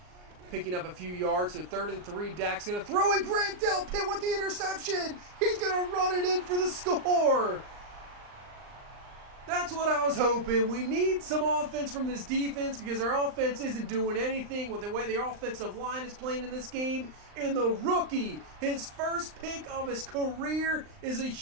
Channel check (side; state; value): left; late; 39 ms